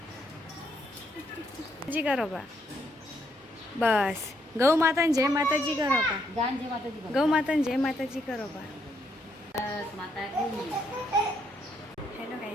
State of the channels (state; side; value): normal; both; correlation 0.74